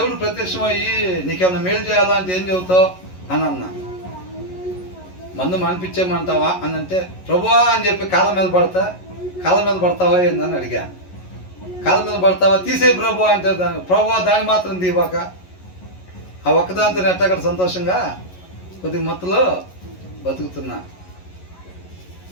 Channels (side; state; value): right; late; 11 ms